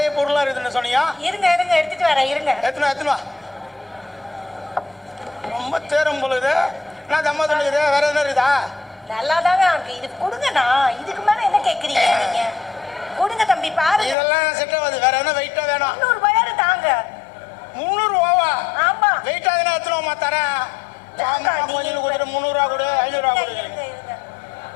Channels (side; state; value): right; drops out; at 14.2 s